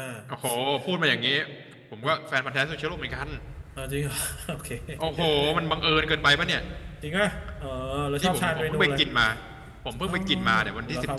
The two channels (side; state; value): both; identical; correlation 1.00